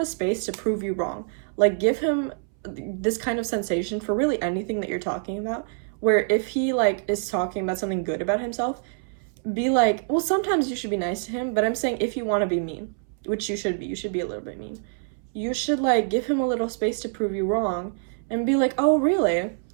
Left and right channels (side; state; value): left; silent; 61 dB below the other